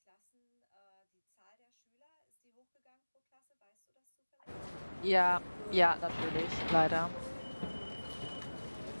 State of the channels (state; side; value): inverted; both; correlation -1.00